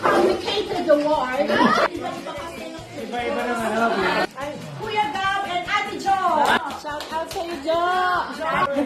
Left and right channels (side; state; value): both; identical; correlation 1.00